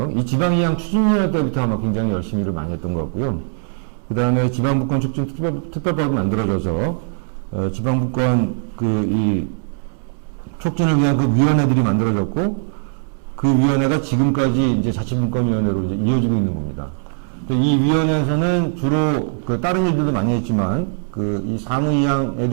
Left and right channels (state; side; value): silent; left; digital silence